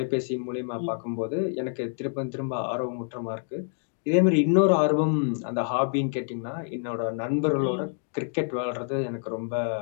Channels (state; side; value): silent; right; 58 dB below the other